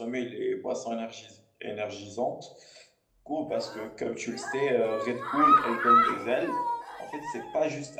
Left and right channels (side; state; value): both; identical; correlation 1.00